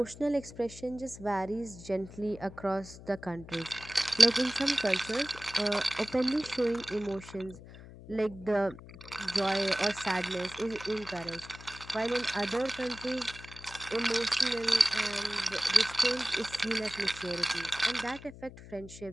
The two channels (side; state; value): left; noise; hum, 16 dB below the sound